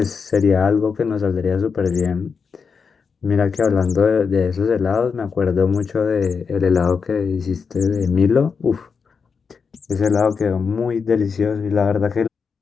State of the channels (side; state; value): right; quieter; 5.6 dB